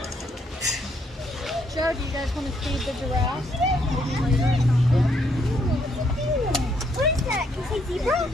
Joe, do you guys want to feed the giraffes? What is that? Can you say zebra?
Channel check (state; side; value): normal; both; correlation 0.72